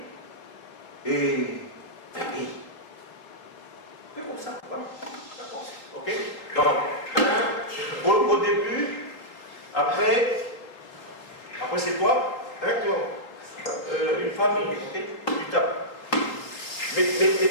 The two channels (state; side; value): late; right; 3.8 ms